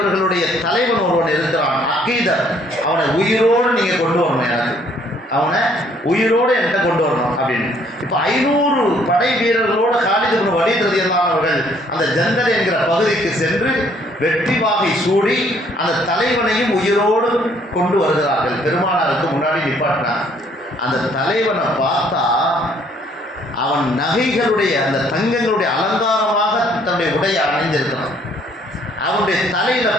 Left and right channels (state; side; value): normal; both; correlation 0.63